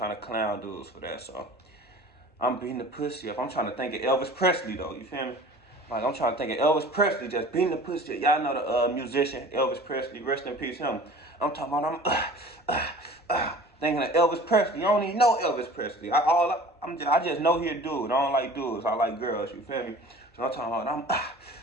to clown dudes for that. So I'm beating the pussy up. I'm trying to think of Elvis Presley though. You feel me? Like, I'm trying to think of Elvis Presley just beating the pussy up. Y'all know the musician Elvis Presley. Rest in peace, him. I'm talking about thinking of Elvis Presley. I don't even know Elvis Presley. I just know he a dude. I don't like dudes. I like girls. You feel me? So I'm talking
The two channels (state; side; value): normal; both; correlation 0.43